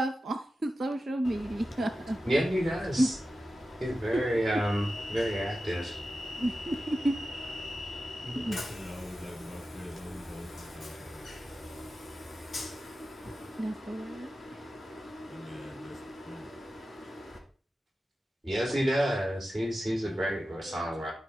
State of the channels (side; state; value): both; normal; correlation 0.93